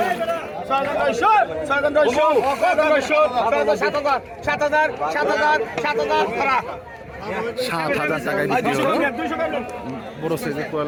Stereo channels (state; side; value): identical; both; correlation 1.00